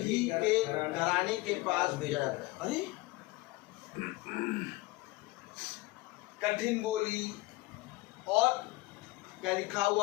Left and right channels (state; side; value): quieter; right; 20.2 dB